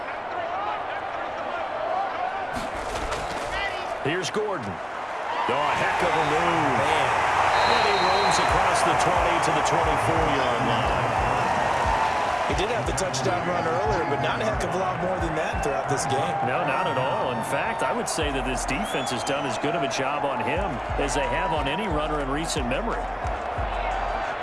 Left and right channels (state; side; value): identical; both; correlation 1.00